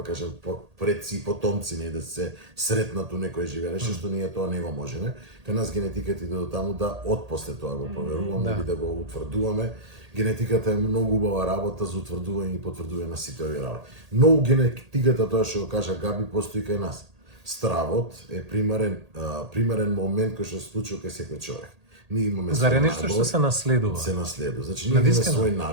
да кажем, предци и потомци, не да се сретнат у некој живее, што ние тоа не го можеме. Кај нас генетиката иде до таму да отпосле тоа го проверуваме или да го утврдуваме. Генетиката е многу убава работа за утврдување и потврдување на сите овие работи. Но генетиката, тоа што го кажа Габи, постои кај нас. Стравот е примерен момент кој што се случува кај секој човек. Ние имаме Заре нешто што се наследува. Се наследува. Значи ние имаме свои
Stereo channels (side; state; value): left; late; 1.8 ms